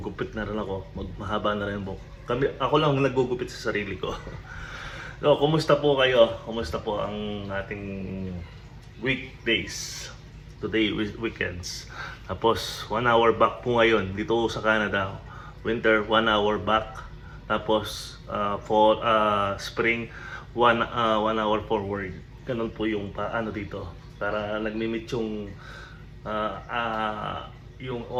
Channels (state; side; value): identical; both; correlation 1.00